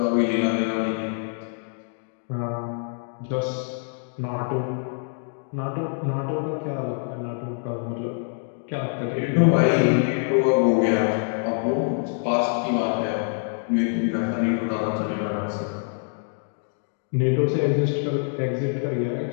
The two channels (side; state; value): right; silent; 62 dB below the other